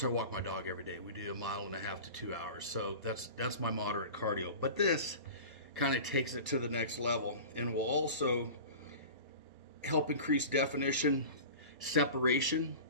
I walk my dog every day. We do 1.5 miles to 2 hours, so that's my moderate cardio. But this kind of takes it to the next level and will also help increase definition, separation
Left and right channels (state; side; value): inverted; both; correlation -0.35